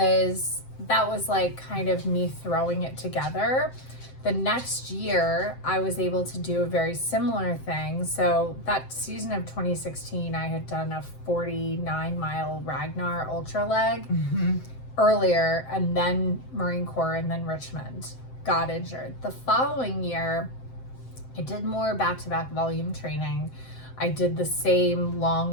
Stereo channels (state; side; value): late; right; 7.7 ms